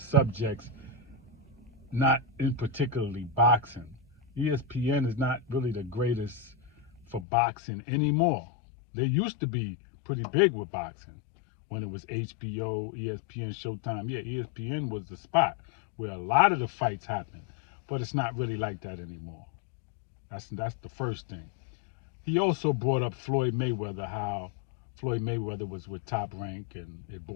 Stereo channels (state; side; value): drops out; right; at 7.2 s